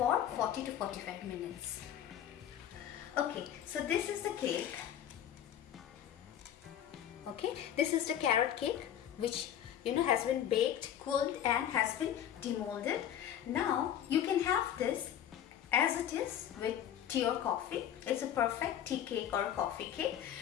40 to 45 minutes. Okay, so this is the cake. Okay, this is the carrot cake which has been baked, cooled and has been demolded. Now you can have this as it is with tea or coffee. It's a perfect tea cake or a coffee cake.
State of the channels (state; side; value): quieter; right; 10.3 dB